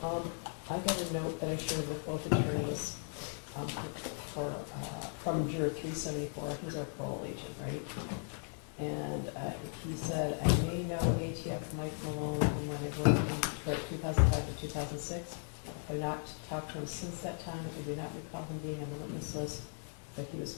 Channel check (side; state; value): right; silent; 53 dB below the other